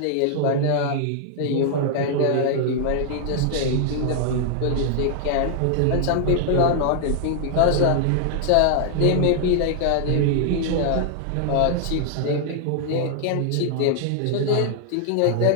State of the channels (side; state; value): both; different; correlation 0.00